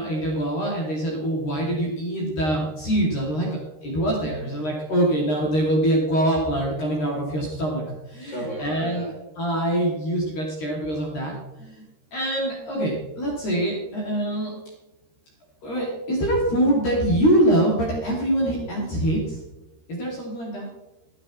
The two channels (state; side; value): late; right; 13 ms